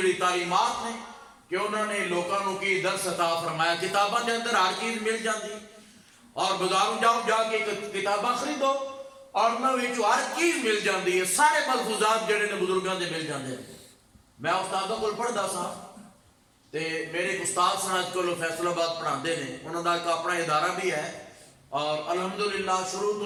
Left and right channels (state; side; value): identical; both; correlation 1.00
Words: تعلیمات نے کہ انہوں نے لوگوں کو کی درس عطا فرمایا، کتاباں دے اندر ہر چیز مل جاتی، اور بازاروں جاؤ جا کے کتاباں خریدو اور انہوں ہر چیز مل جاتی ہے، سارے ملفوظات جڑے نے بزرگاں دے مل جاندے ہیں۔ میں استادوں کو پڑھدا سا تے میرے ایک استاد سن اج کل فیصل آباد پڑھاندے نے، انہوں دا ایک اپنا ادارہ بھی ہے، اور الحمدللہ شروع